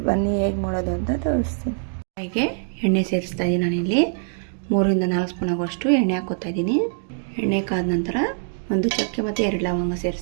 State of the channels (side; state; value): left; silent; digital silence